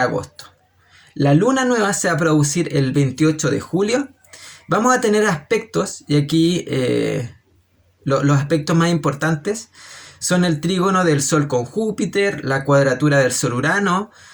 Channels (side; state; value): both; identical; correlation 1.00